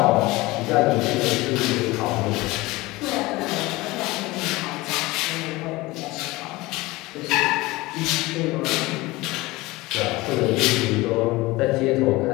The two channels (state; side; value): quieter; right; 20.8 dB